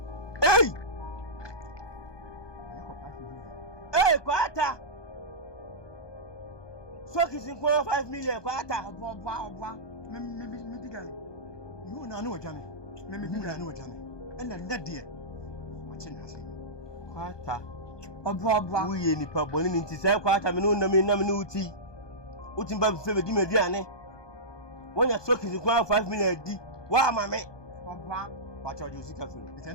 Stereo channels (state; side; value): late; right; 1.2 ms